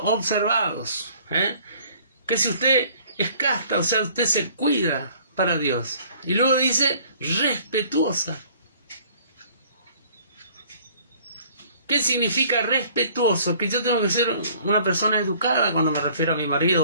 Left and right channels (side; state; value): both; inverted; correlation -0.55